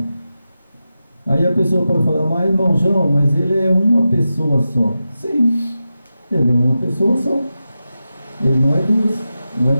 Aí a pessoa pode falar, mas irmão João, mas ele é uma pessoa só. Sim, ele é uma pessoa só. Ele não é duas, não é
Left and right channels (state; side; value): inverted; both; correlation -0.92